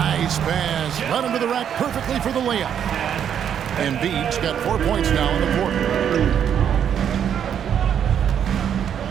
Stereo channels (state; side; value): quieter; left; 8.8 dB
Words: pass. Run into the rack perfectly for the layup. Embiid's got 4 points now in the quarter.